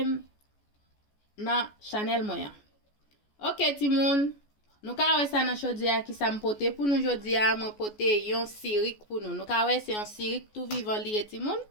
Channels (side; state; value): right; late; 14 ms